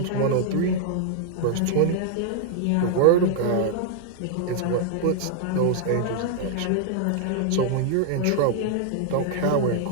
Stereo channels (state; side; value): different; both; correlation 0.00